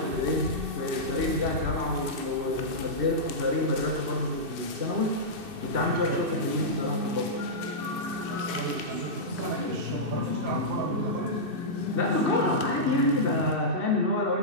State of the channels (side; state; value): left; late; 2.6 ms